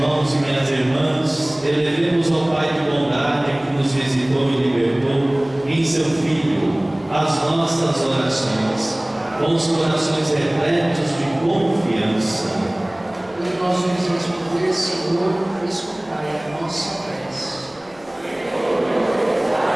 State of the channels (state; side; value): noise; left; rumble, 28 dB below the sound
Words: e minhas irmãs, elevemos ao Pai de bondade que nos visitou e libertou em seu Filho as nossas orações, com os corações repletos de confiança. E nós vamos responder, Senhor, escutai a nossa prece.